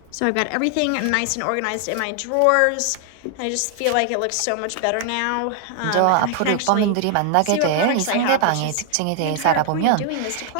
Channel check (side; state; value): both; different; correlation 0.00